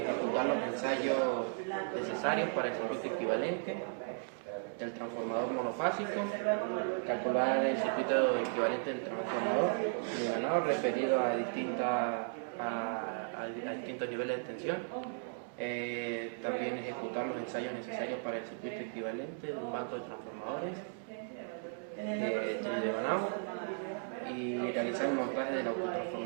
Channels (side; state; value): left; silent; digital silence